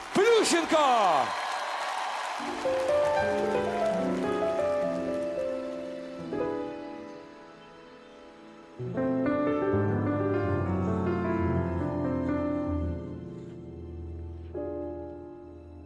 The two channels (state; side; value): identical; both; correlation 1.00